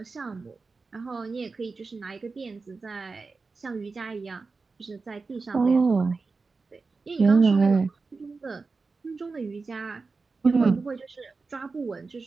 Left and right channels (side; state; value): left; quieter; 4.2 dB